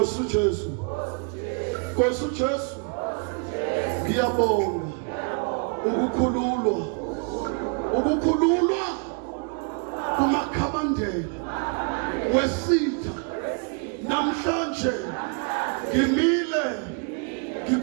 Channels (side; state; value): left; quieter; 38.6 dB